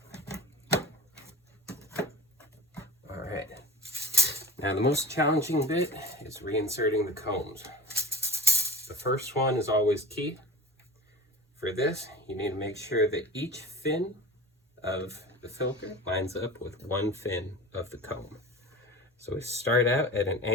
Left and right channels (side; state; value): both; normal; correlation 0.34